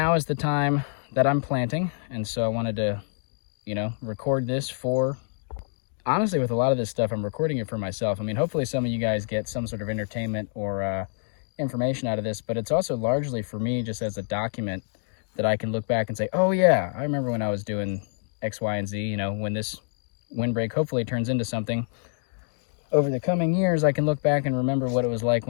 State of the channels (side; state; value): right; silent; digital silence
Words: is the time that I'm planting. And so I wanted to, you know, record this for, honestly, with a lot of this stuff, I'm recording it for myself. I mean, hopefully some of you guys get some sort of entertainment or information out of this, but it's also largely for me just as a document that I can look back and say, oh yeah, I remember when I was doing X, Y, and Z. You know, when this windbreak hopefully turns into something over the coming years, I can look back and remember what it was like